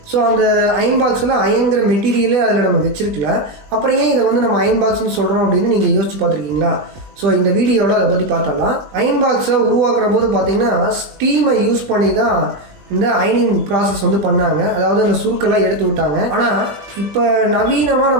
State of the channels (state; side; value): late; left; 20 ms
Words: ஸோ அந்த அயன் பாக்ஸில் அயன்கிற மெட்டீரியலே அதில் நம்ம வச்சிருக்கல. அப்புறம் ஏன் இதை வந்து நம்ம அயன் பாக்ஸ்னு சொல்கிறோம் அப்படின்னு நீங்கள் யோசிச்சு பார்த்துருக்கீங்களா? ஸோ இந்த வீடியோவில் அதை பற்றி பார்த்தரலாம். அயன் பாக்ஸை உருவாக்குற போது பார்த்தீங்கன்னா ஸ்டீமை யூஸ் பண்ணி தான் இந்த அயனிங் ப்ராசஸ் வந்து பண்ணாங்க. அதாவது அந்த சுருக்கெல்லாம் எடுத்து விட்டாங்க. ஆனால் இப்போ நவீனமாக